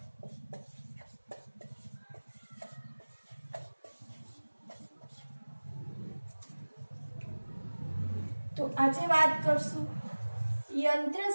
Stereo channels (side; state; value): both; inverted; correlation -1.00